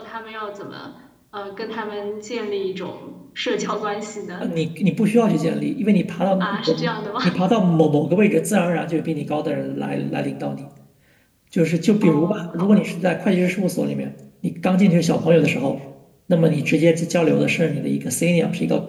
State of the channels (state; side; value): identical; both; correlation 1.00